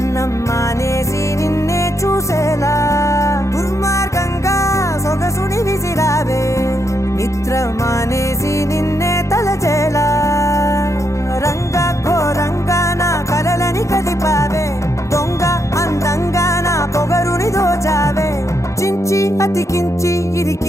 మానేసి నిన్నే చూసేలా దుర్మార్గంగా సొగసుని విసిరావే నిద్ర మానేసి నిన్నే తలచేలా రంగా ఘోరంగా నా కలలని కదిపావే దొంగ అందంగా నా పొగరుని దోచావే చించి అతికించి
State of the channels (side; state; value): right; late; 0.15 ms